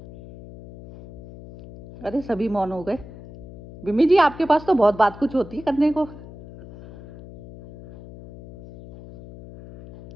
अरे सभी मौन हो गए। बिमी जी, आपके पास तो बहुत बात कुछ होती है करने को।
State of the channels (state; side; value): noise; left; hum, 17 dB below the sound